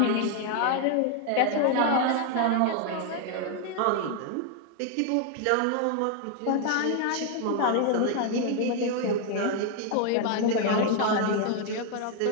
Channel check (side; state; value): both; different; correlation 0.00